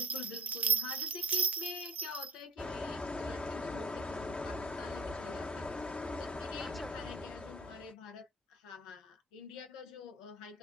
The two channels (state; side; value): normal; both; correlation 0.49